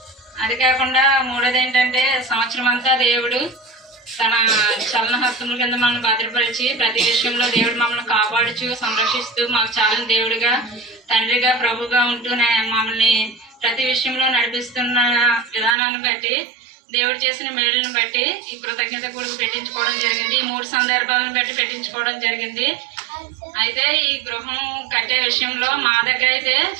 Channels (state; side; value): drops out; left; at 15.8 s